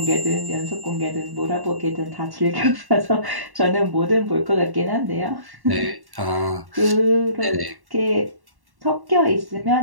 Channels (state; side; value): late; left; 1.1 ms